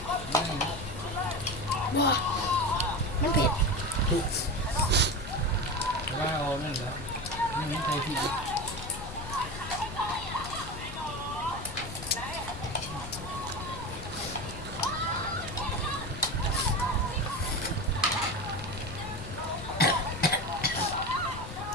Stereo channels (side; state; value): left; noise; rumble, 10 dB below the sound